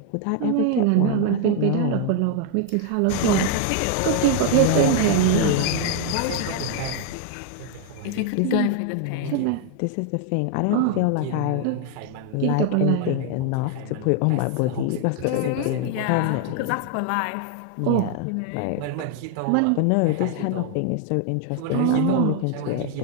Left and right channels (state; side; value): different; both; correlation 0.00